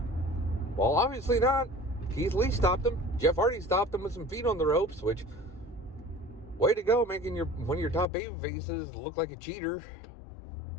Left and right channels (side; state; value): right; drops out; at 8.1 s